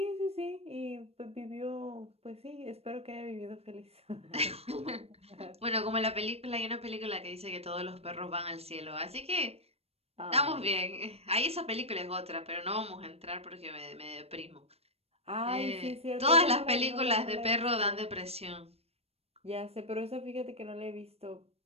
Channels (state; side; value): late; left; 0.29 ms